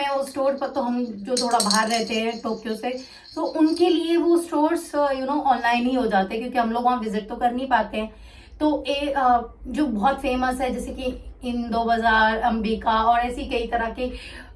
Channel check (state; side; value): identical; both; correlation 1.00